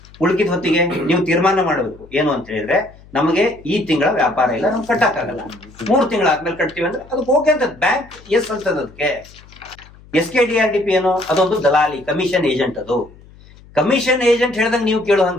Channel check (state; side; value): noise; left; hum, 23 dB below the sound